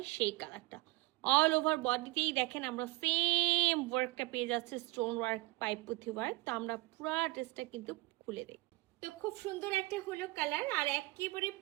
সেই কালারটা। অল ওভার বডিতেই দেখেন আমরা সেম ওয়ার্কটা পেয়ে যাচ্ছে, স্টোন ওয়ার্ক পাইপ পুঁথি ওয়ার্ক। তো আমরা পুরো ড্রেসটা কিন্তু খুলে দিই। তো খুব সুন্দর একটা হলো কালার, আর একেবারে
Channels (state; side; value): quieter; left; 21.7 dB